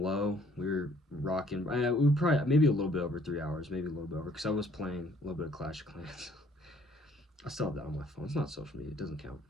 low. We were rocking. We were probably maybe a little bit over 3 hours, maybe a little bit over, because I was playing a little bit of Clash of Clans. I still have that on my phone. It's not social media. It doesn't count.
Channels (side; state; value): both; normal; correlation 0.61